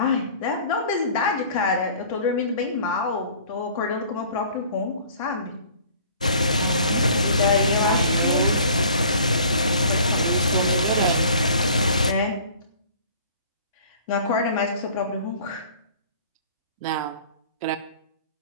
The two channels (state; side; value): inverted; both; correlation -0.50